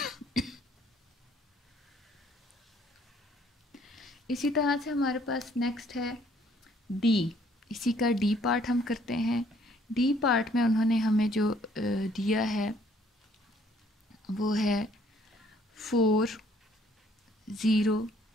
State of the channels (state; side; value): normal; both; correlation 0.62